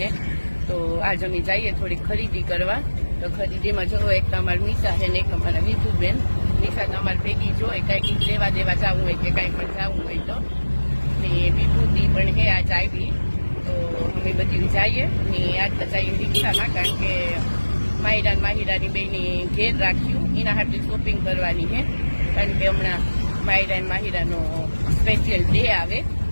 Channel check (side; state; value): both; inverted; correlation -1.00